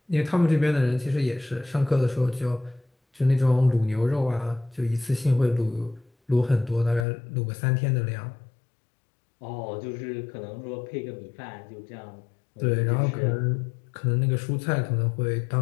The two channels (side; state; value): right; drops out; at 7.1 s